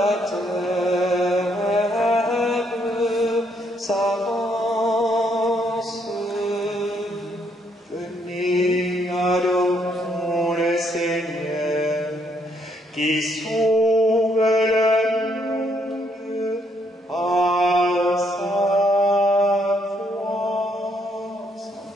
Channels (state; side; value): normal; both; correlation 0.72